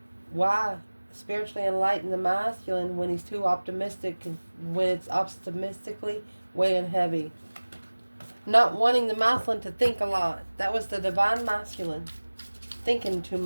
Why spiritually enlighten the masculine when he's too optimistic, when it's optimistically weighing heavy? Not wanting the masculine to think a lot. That was the divine masculine. Thinking too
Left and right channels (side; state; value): both; inverted; correlation -1.00